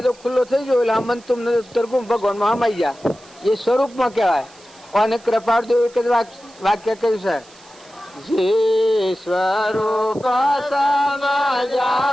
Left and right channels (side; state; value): right; noise; hiss, 25 dB below the sound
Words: ખુલ્લો થઈ ગયો એટલે અમન તુમ તરગુમ ભગવાનમાં હમાઈ ગયા. એ સ્વરૂપમાં કહેવાય. અને કૃપાળદેવ એક જ વાક્ય કહ્યું છે, જે સ્વરૂપ સમજાવિના